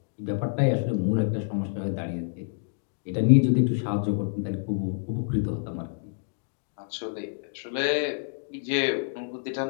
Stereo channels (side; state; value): right; silent; digital silence